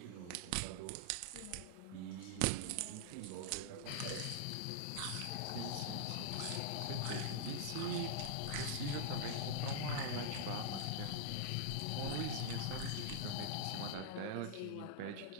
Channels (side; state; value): both; different; correlation -0.01